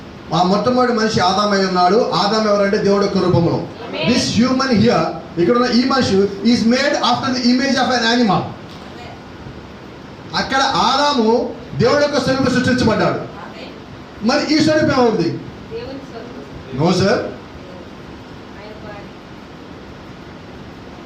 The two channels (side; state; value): both; identical; correlation 1.00